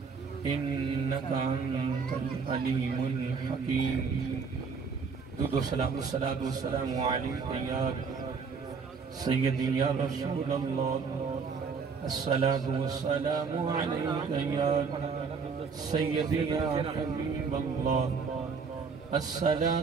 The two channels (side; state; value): left; quieter; 5.4 dB